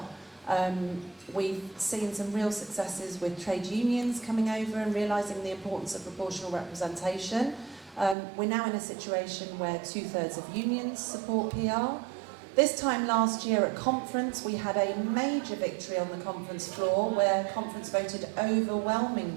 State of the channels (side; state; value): left; drops out; at 8.2 s